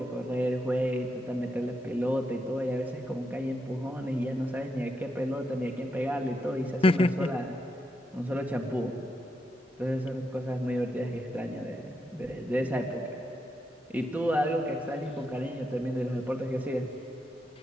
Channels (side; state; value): both; normal; correlation 0.82